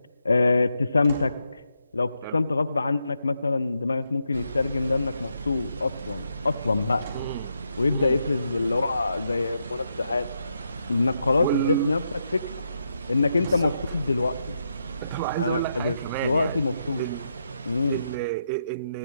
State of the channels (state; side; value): inverted; both; correlation -0.82